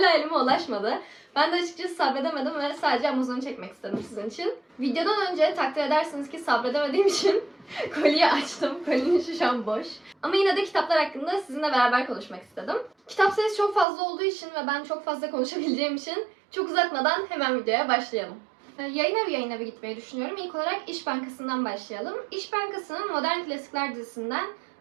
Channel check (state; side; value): drops out; left; at 13.9 s